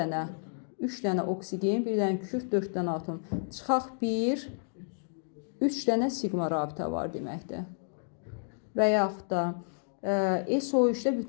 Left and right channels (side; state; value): right; silent; digital silence